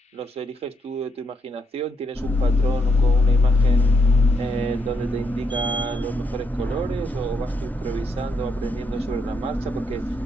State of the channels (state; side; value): normal; both; correlation 0.77